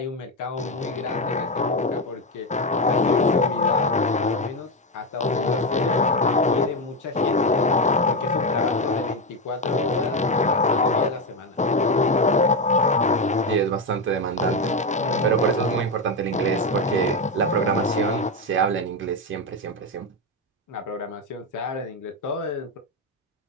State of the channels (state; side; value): normal; both; correlation 0.11